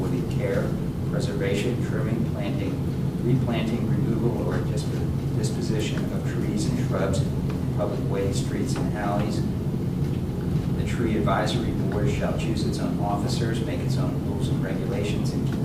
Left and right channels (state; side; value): identical; both; correlation 1.00